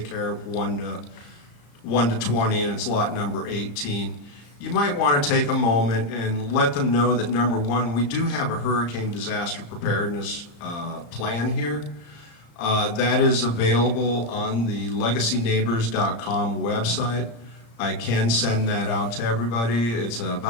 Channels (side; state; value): right; late; 35 ms